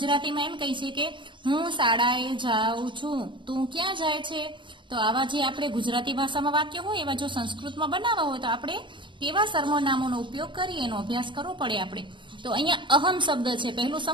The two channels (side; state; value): left; late; 0.23 ms